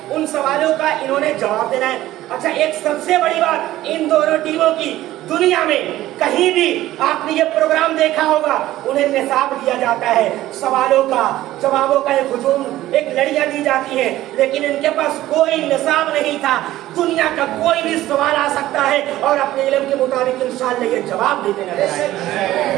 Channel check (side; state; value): left; quieter; 15.1 dB